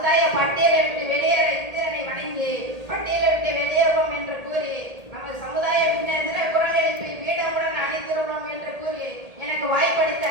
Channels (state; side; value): late; left; 1.8 ms